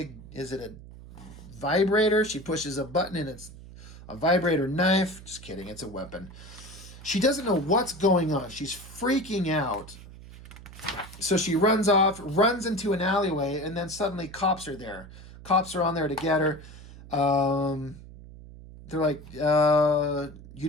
is it a vibrator? She pushes a button, and it's a vibrator knife. Just kidding, it's a weapon. She doesn't know what's going on. She's freaking out. So she runs off, runs into an alleyway, and then suddenly cops are there. Cops are on there to get her. They're like, you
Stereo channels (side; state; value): right; noise; hum, 17 dB below the sound